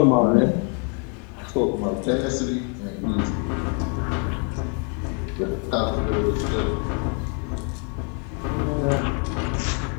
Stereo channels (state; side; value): quieter; right; 39.5 dB